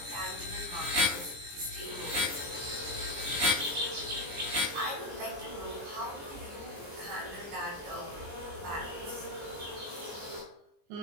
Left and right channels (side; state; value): left; late; 20 ms